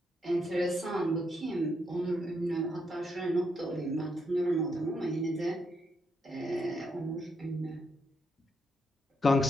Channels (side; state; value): both; normal; correlation 0.78